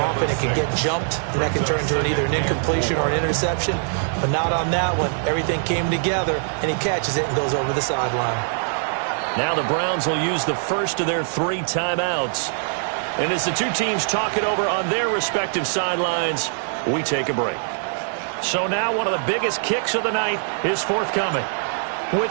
it can get jumped, and that can turn into either an incompletion or an interception. But not on that one. Everything came together, and he catches it and goes over the sideline. Now the Browns will use the first of their 3 timeouts. And as the two teams talk it over on their respective sidelines, we take a break. So now one of the biggest kicks of the night is forthcoming. With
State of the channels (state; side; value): silent; left; digital silence